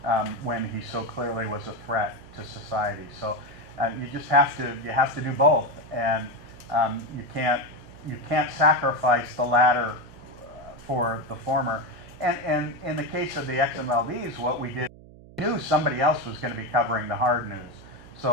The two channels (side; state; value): right; noise; hum, 20 dB below the sound